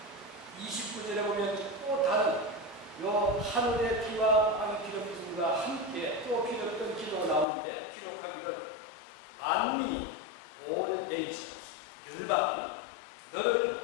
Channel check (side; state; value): right; drops out; at 7.5 s